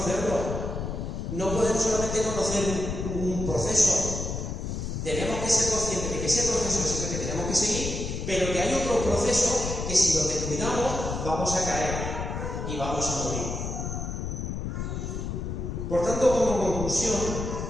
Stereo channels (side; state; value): left; noise; rumble, 4 dB below the sound